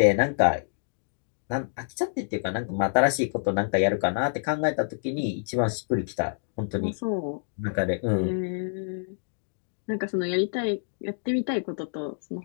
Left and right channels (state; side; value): silent; right; digital silence